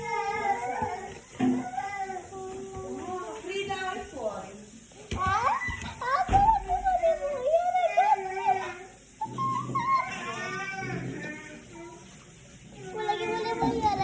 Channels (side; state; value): both; identical; correlation 1.00